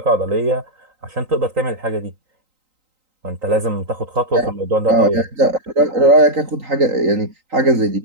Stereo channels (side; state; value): left; late; 3.9 ms